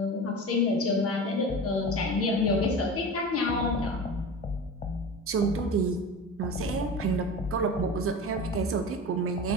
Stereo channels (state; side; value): normal; both; correlation 0.31